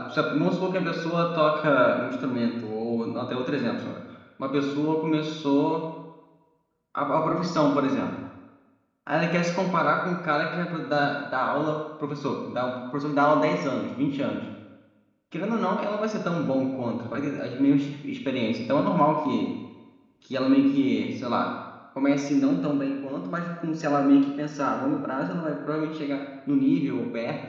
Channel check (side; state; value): both; identical; correlation 1.00